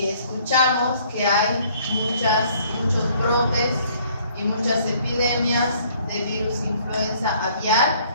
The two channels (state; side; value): inverted; both; correlation -0.60